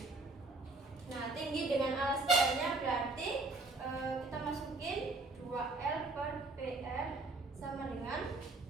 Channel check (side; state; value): left; quieter; 3.3 dB